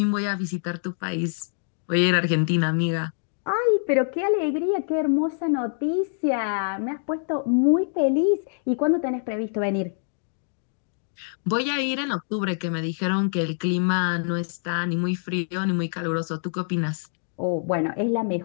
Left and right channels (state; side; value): silent; right; digital silence